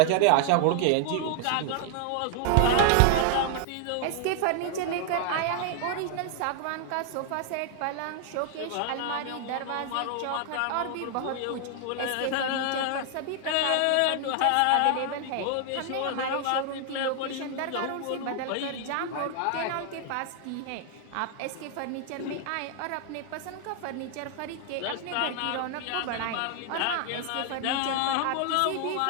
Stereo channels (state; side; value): different; both; correlation 0.00